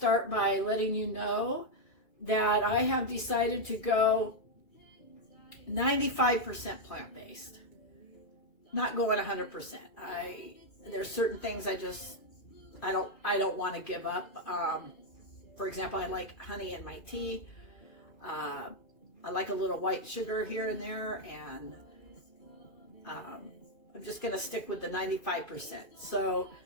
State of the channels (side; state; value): right; late; 2.5 ms